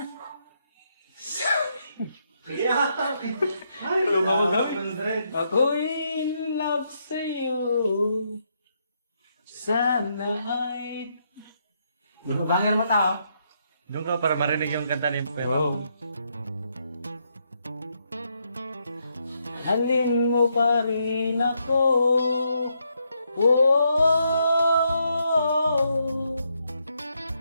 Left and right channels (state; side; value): inverted; both; correlation -0.77